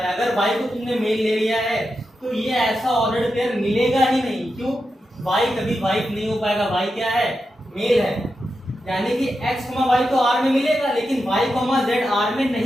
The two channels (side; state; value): both; normal; correlation 0.88